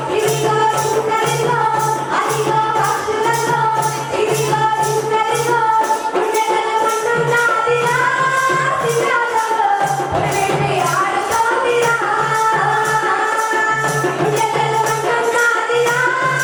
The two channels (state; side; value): identical; both; correlation 1.00